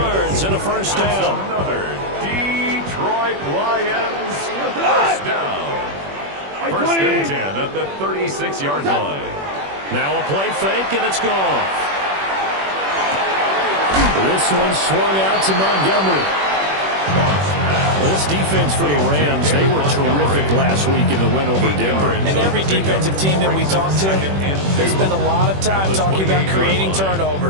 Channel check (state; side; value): late; left; 21 ms